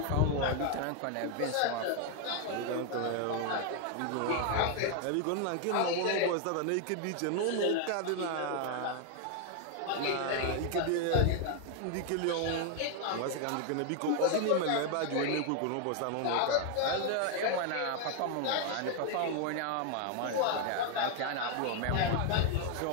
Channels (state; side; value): different; both; correlation 0.00